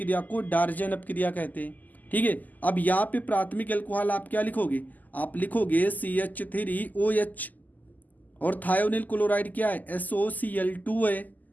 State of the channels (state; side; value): late; right; 0.082 ms